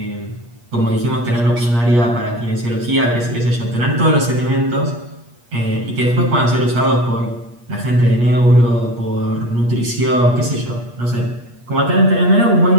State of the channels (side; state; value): left; late; 8.4 ms